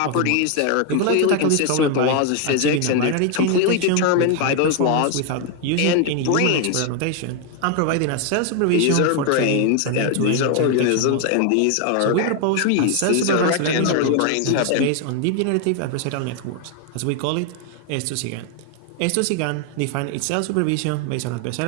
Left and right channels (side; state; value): both; different; correlation 0.01